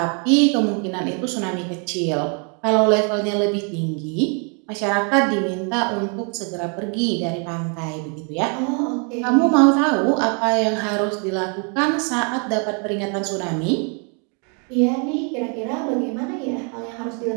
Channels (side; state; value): left; quieter; 37.8 dB